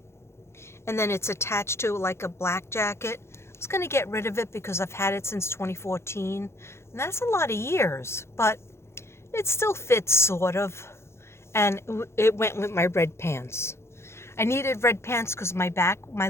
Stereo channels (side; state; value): right; late; 0.13 ms